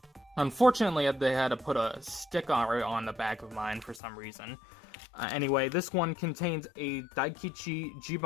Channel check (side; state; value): right; drops out; at 4.0 s